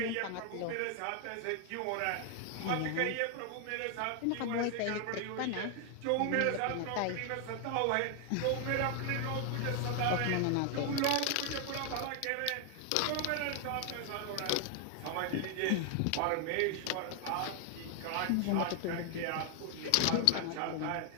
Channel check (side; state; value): both; different; correlation 0.00